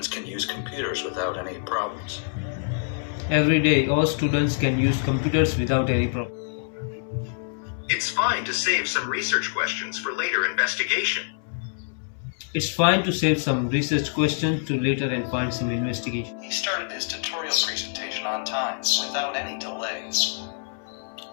can use computers without any problems. Every day, all students can use computers without any problem. It's fine to save some research questions for later investigation. It's fine to save some research questions to later and find some investigation. He started his tutorial presentation on time, without any delay.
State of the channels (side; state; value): right; silent; 61 dB below the other